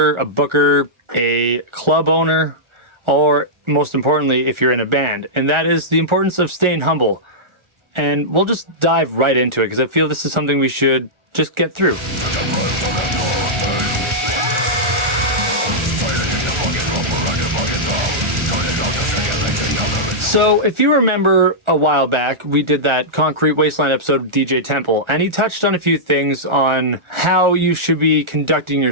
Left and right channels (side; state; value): left; late; 1.4 ms